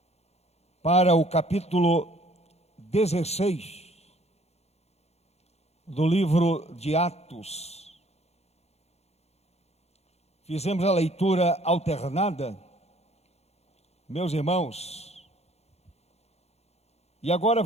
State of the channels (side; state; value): right; late; 0.31 ms